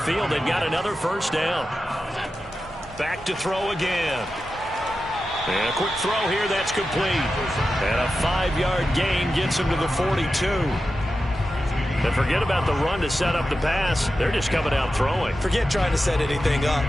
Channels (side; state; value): both; normal; correlation 0.92